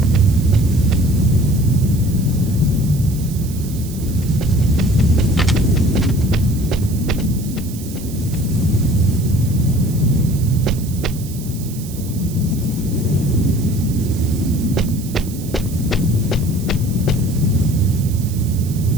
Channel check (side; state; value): right; noise; hiss, 16 dB below the sound